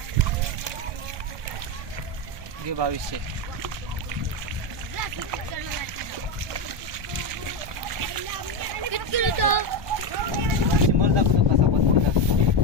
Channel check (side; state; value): left; late; 1.2 ms